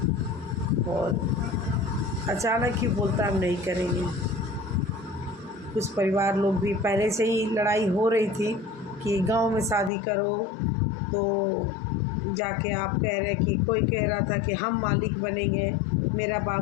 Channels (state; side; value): drops out; right; at 9.9 s